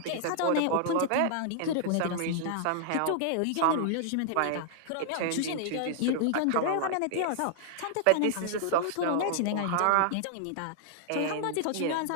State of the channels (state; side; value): different; both; correlation -0.01